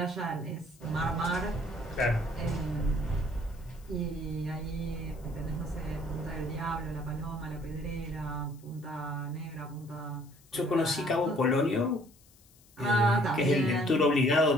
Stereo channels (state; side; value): noise; left; hiss, 28 dB below the sound